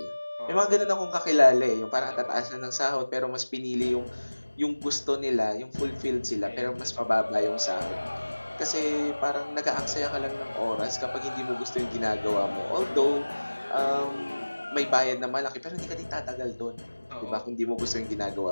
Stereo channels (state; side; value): inverted; both; correlation -1.00